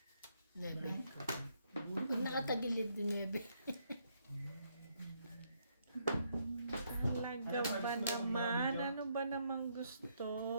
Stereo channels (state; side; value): inverted; both; correlation -0.74